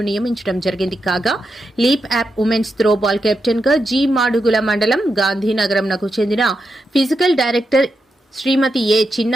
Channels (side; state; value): both; normal; correlation 0.86